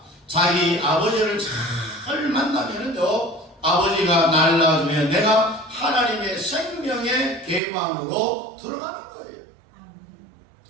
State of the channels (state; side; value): drops out; left; at 7.6 s